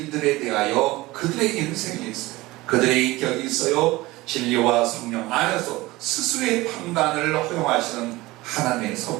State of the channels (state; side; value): quieter; left; 19.9 dB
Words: 대하여 그들의 인생이 있어요. 그들의 인격이 있어요. 진리와 성령 안에서 스스로의 판단을 허용하시는 하나님의